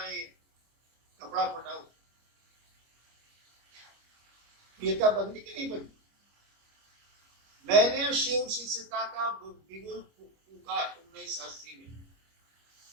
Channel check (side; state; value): left; late; 25 ms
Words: है, कपड़ा फटा हुआ। प्रियता बदली कि नहीं बदली? मैंने शिव शिष्यता का बिगुल फूका 1980 में।